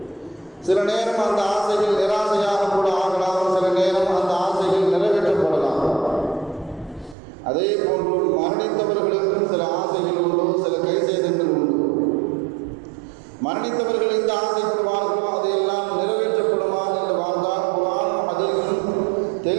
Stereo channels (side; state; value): left; drops out; at 7.2 s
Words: சில நேரம் அந்த ஆசைகள் நிராசையாக கூட ஆகலாம், சில நேரம் அந்த ஆசைகள் நிறைவேற்றப்படலாம். அதே போன்று மரணித்தவர்களுக்கும் சில ஆசைகள் உண்டு, சில கைசேதங்கள் உண்டு. மரணித்தவர்கள் இந்த ஆசைப்படுவார்களோ அதையெல்லாம் நிறைவேற்றப்படுமா என்று வாழ்ந்தால் குர்ஆனும் ஹதீஸும்